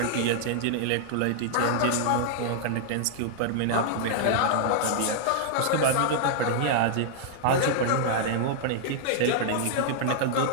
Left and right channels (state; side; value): different; both; correlation -0.01